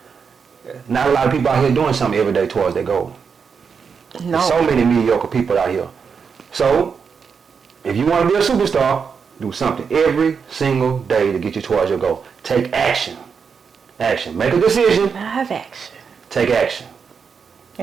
Not a lot of people out here doing something every day towards their goal. No. There's so many mediocre people out here. So, if you want to be a superstar, do something every single day to get you towards your goal. Take action. Action. Make a decision. I have action. Take action.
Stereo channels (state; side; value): quieter; left; 6.1 dB